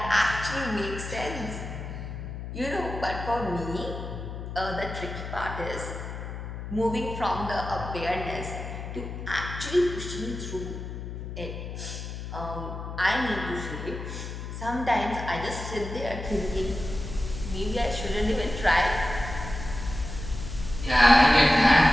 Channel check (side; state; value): left; noise; hum, 8 dB below the sound